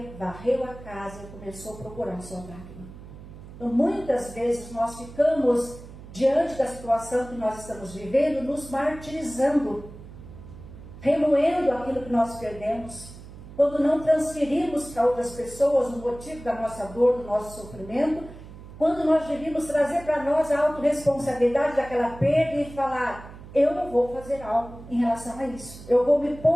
varreu a casa e começou a procurar sua dracma. Então, muitas vezes nós ficamos diante da situação que nós estamos vivendo, nos martirizando, remoendo aquilo que nós perdemos, quando não transferimos para outras pessoas o motivo da nossa dor, do nosso sofrimento, quando nós devíamos trazer para nós a autorresponsabilidade daquela perda e falar: eu não vou fazer algo em relação a isso, eu vou me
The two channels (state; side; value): noise; right; hum, 16 dB below the sound